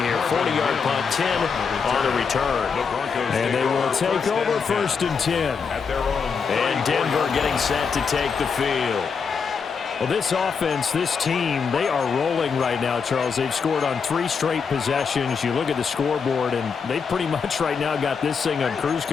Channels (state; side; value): quieter; right; 5.8 dB